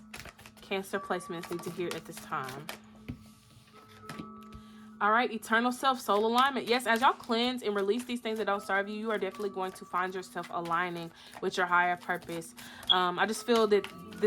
Cancer placements need to hear at this time? All right, eternal self, soul alignment. Yes, as y'all cleanse and release these things that don't serve you, you are definitely going to find yourself aligning with your higher purpose. I just feel that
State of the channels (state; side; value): identical; both; correlation 1.00